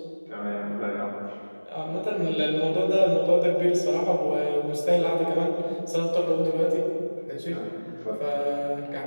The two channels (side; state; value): both; inverted; correlation -1.00